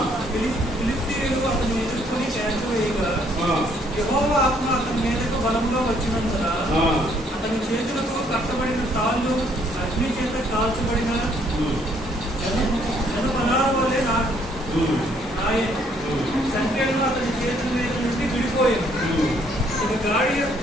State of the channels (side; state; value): both; normal; correlation 0.66